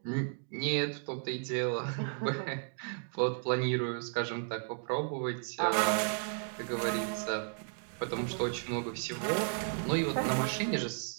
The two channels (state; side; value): silent; left; 55 dB below the other